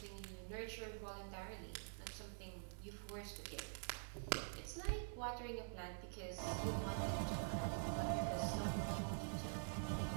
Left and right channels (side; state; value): left; silent; digital silence